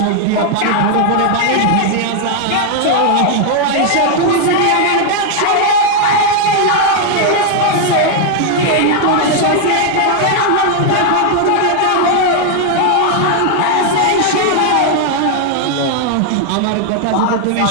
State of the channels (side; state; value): both; different; correlation 0.00